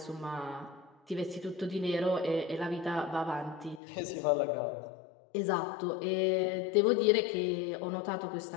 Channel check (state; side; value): drops out; right; at 3.8 s